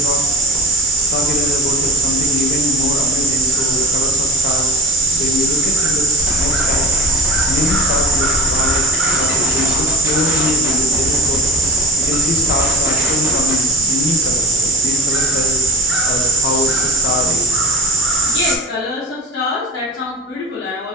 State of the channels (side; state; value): both; normal; correlation 0.33